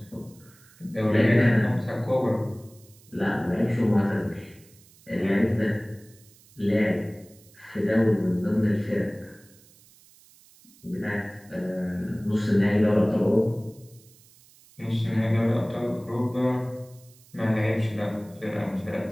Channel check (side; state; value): right; noise; hiss, 27 dB below the sound